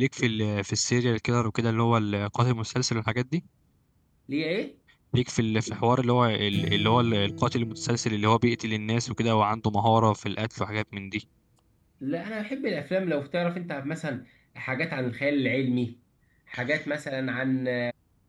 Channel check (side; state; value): both; identical; correlation 1.00